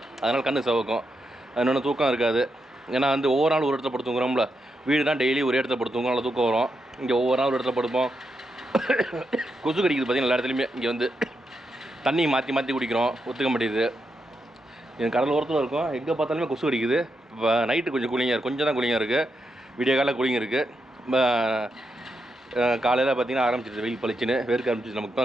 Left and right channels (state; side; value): normal; both; correlation 0.84